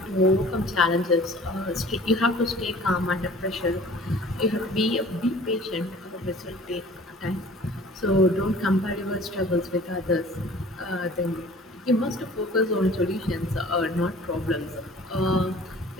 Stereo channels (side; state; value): both; normal; correlation 0.48